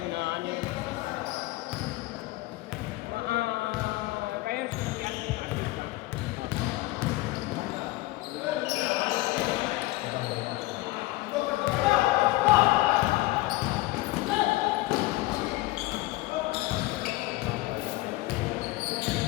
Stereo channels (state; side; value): quieter; right; 19.4 dB